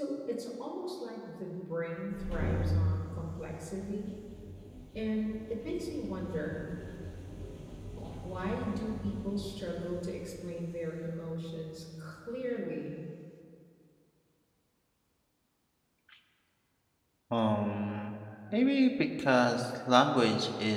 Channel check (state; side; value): identical; both; correlation 1.00